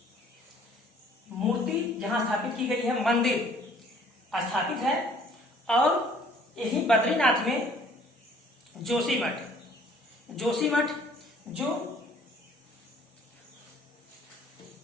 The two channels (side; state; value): both; normal; correlation 0.57